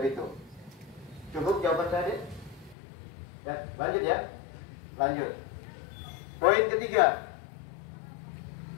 Bitung. Cukup jawaban saya, Dek? Ya, lanjut ya. Lanjut. Poin ketiga.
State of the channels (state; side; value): drops out; right; at 2.8 s